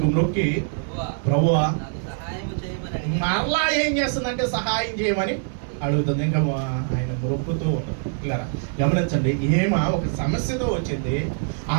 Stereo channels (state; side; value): silent; left; digital silence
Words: మొక్కి ప్రభువా మరలా ఏం చేస్తుందంటే సహాయం చేయమని అడుగుతుంది. ఇంకా ఆయన మొక్కుతూ ఉన్నాడు. ఇలా గమనించండి, ఒక సమస్యతో వచ్చింది. ఆ